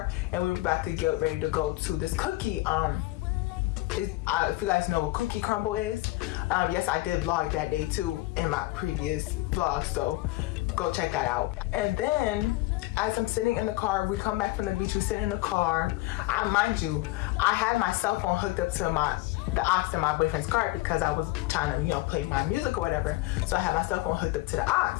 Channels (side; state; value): right; quieter; 19.3 dB